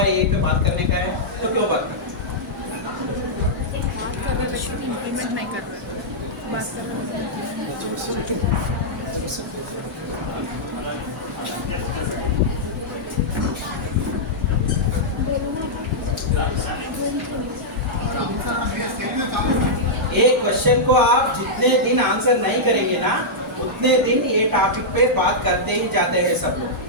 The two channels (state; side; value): normal; both; correlation -0.09